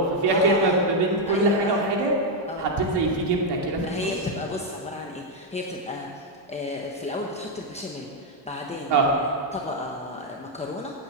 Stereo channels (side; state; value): both; normal; correlation 0.01